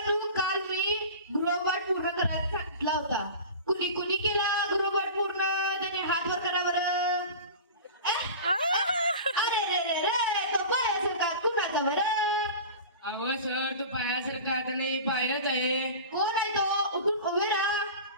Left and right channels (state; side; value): inverted; both; correlation -0.34